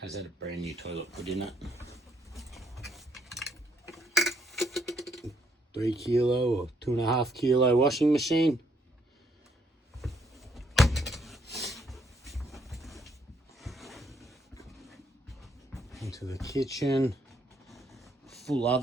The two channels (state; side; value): normal; both; correlation 0.71